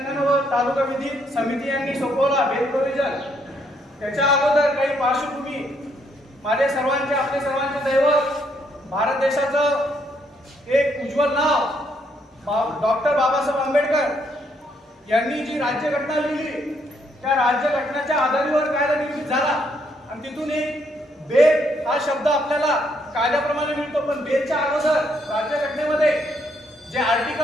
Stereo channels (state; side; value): normal; both; correlation 0.72